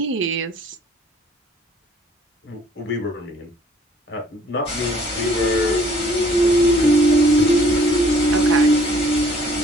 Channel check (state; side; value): normal; both; correlation 0.59